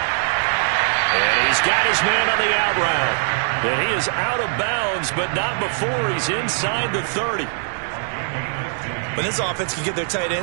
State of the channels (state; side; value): silent; left; 65 dB below the other